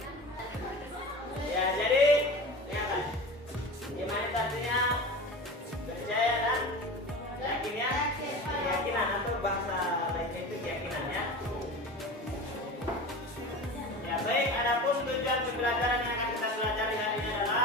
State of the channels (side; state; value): both; normal; correlation 0.32